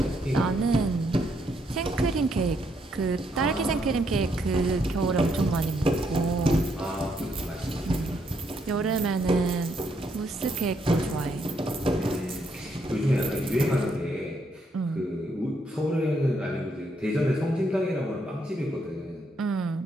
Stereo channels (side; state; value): both; normal; correlation 0.74